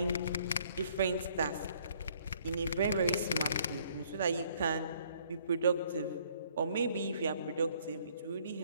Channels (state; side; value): inverted; both; correlation -0.63